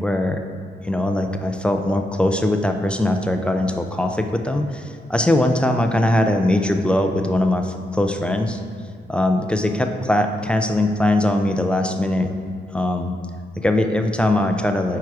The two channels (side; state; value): both; normal; correlation 0.84